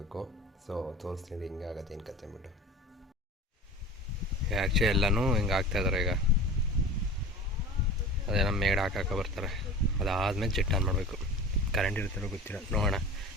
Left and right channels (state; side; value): normal; both; correlation 0.36